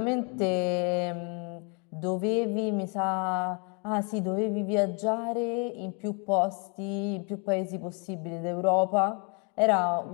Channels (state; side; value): quieter; right; 35.6 dB